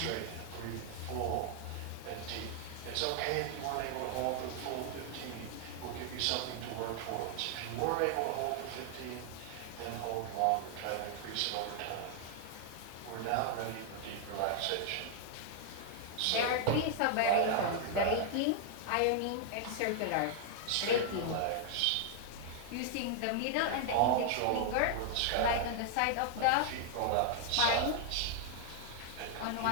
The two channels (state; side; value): different; both; correlation 0.00